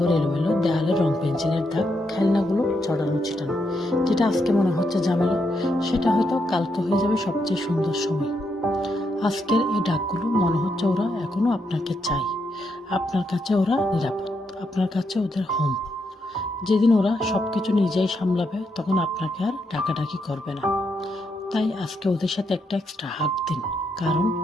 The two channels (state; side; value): normal; both; correlation 0.80